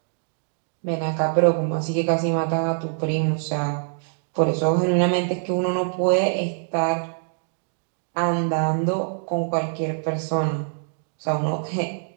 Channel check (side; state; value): left; silent; digital silence